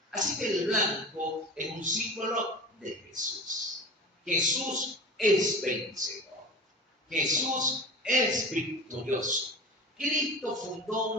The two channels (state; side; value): normal; both; correlation 0.34